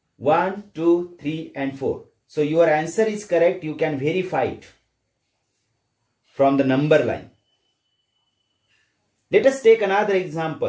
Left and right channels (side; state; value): both; identical; correlation 1.00